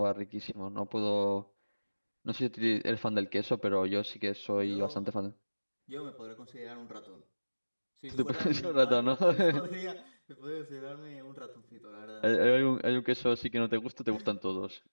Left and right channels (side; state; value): both; inverted; correlation -1.00